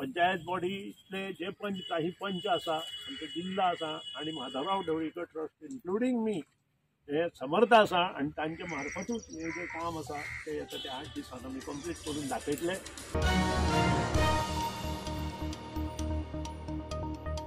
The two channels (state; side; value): identical; both; correlation 1.00